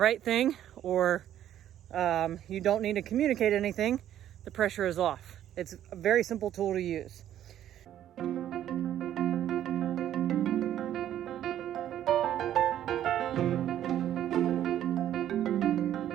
thing, or you don't need to communicate anything, the pressure is off. It's a very simple tool to use.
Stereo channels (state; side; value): quieter; left; 11.4 dB